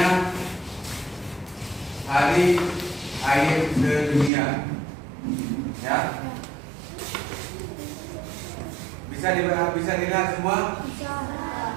Hari Air Sedunia. Ya. Bisa dilihat semua?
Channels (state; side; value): drops out; left; at 4.3 s